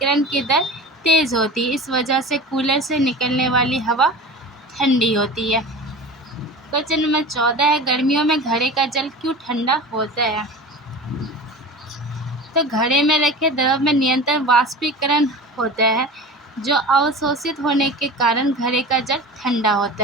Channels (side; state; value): both; normal; correlation 0.34